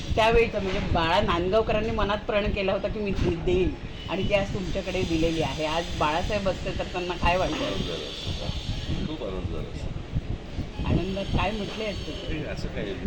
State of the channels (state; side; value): identical; both; correlation 1.00